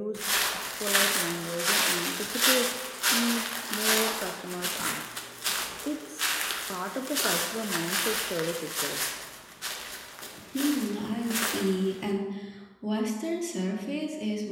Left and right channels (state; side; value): identical; both; correlation 1.00